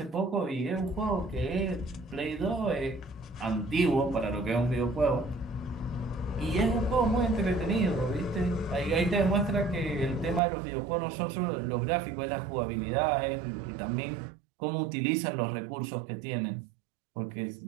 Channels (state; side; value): drops out; left; at 10.4 s